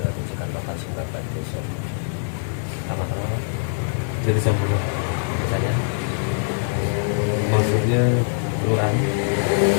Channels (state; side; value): silent; right; digital silence